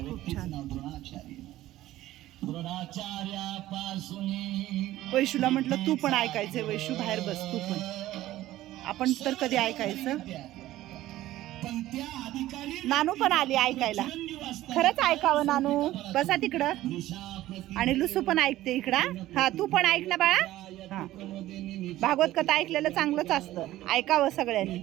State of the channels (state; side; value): quieter; left; 15.2 dB